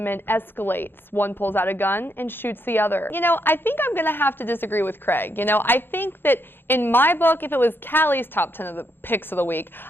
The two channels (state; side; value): late; right; 0.10 ms